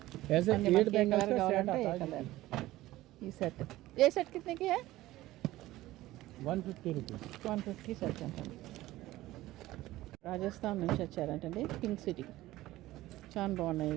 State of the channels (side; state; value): left; quieter; 16.7 dB